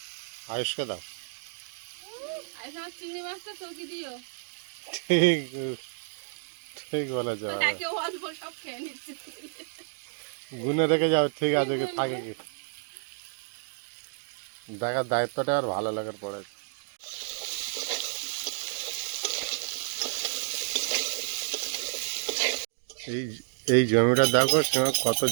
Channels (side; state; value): left; silent; digital silence